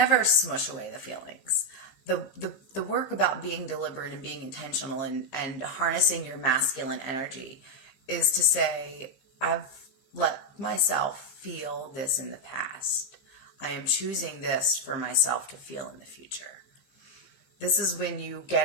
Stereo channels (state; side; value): late; right; 15 ms